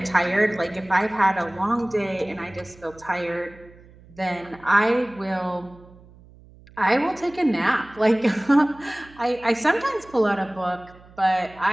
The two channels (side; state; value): right; noise; hum, 24 dB below the sound